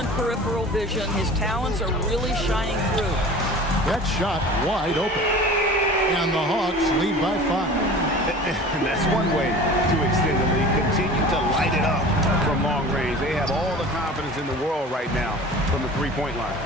peripheral vision. His talents are really shining through. That shot wide open. And the Hawks lead by 5. And that's one way to extend the lead. Continue to light it up from long range. They have all the confidence in the world right now from the three-point line.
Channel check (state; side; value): normal; both; correlation 0.40